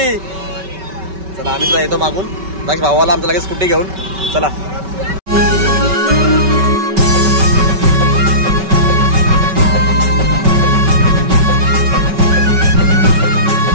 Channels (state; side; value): late; left; 5.2 ms